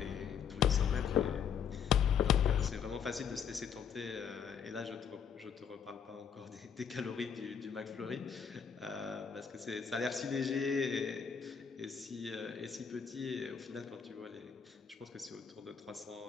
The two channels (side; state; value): right; quieter; 7.2 dB